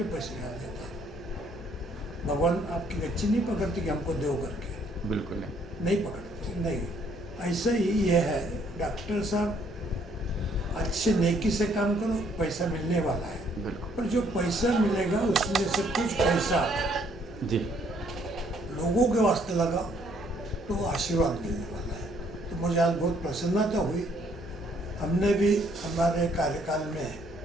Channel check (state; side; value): normal; both; correlation 0.66